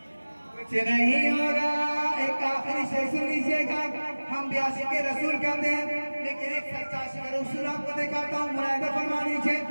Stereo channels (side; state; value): both; inverted; correlation -1.00